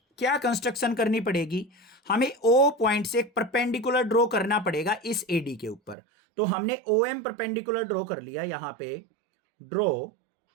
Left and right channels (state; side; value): drops out; left; at 6.0 s